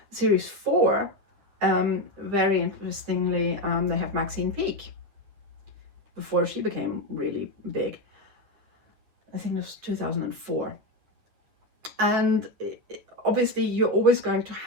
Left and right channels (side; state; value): left; late; 10 ms